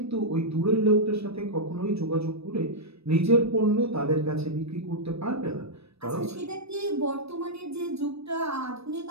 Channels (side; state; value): left; late; 0.78 ms